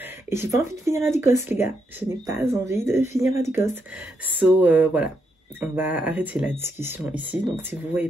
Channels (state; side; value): normal; both; correlation 0.80